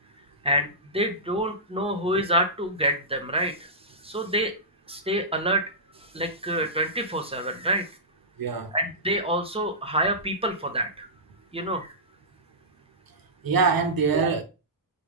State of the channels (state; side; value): normal; both; correlation -0.18